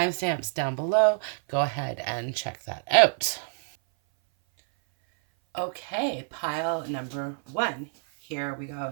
down below. Go ahead and check that out. Okay, pile number 1. Here we go.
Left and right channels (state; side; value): silent; left; 58 dB below the other